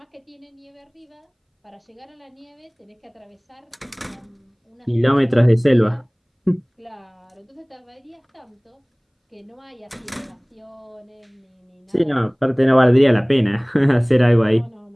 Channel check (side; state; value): both; identical; correlation 1.00